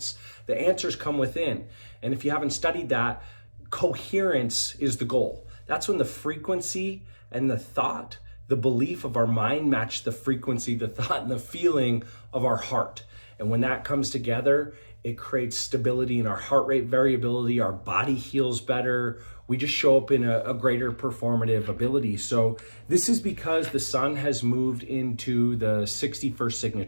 The answers come within. And if you haven't studied that, coherence is the goal. That's when the frequency and the thought, the belief of our mind match the frequency, the thought, and the feeling of our heart. And when that comes together, it creates stability in our heart rate variability. Our body heals better. We just show up in a greater performative ability. So this is because the sun has moved into the 61st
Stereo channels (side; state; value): both; inverted; correlation -1.00